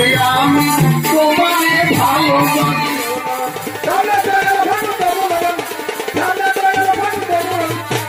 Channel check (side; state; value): both; identical; correlation 1.00